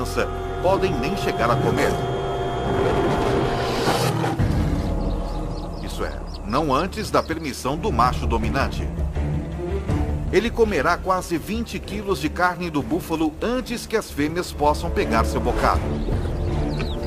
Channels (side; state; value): both; identical; correlation 1.00